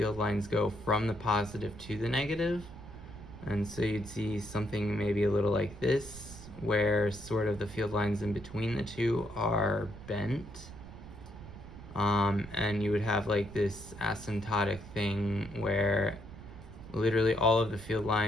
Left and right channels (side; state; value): right; noise; rumble, 15 dB below the sound